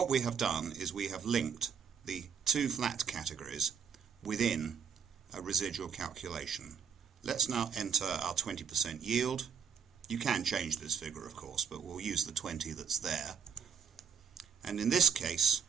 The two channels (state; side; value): quieter; left; 7.0 dB